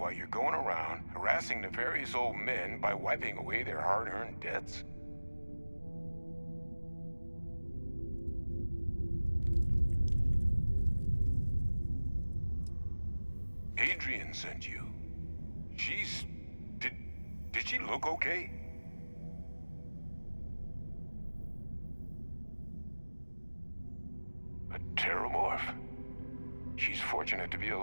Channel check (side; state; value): both; inverted; correlation -1.00